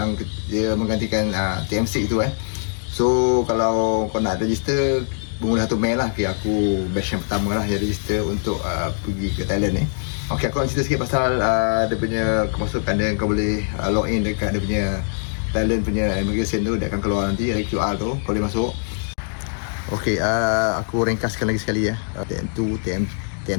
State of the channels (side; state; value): right; silent; digital silence